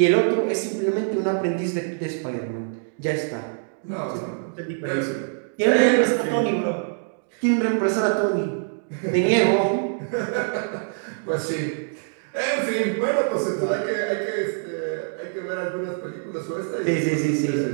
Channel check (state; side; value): silent; left; digital silence